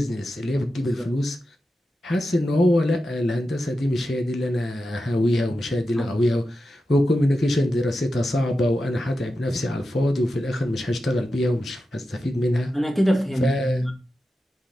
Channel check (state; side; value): normal; both; correlation 0.91